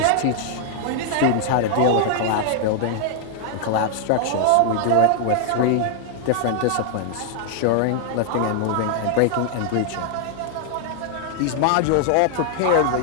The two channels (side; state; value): both; different; correlation 0.00